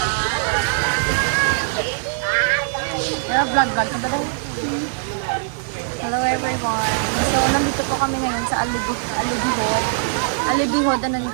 Pero vlog ka ba daw? Hello everyone. So, nandito po kami ngayon sa Alibihod. Alibihod, ano ni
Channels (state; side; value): silent; left; 58 dB below the other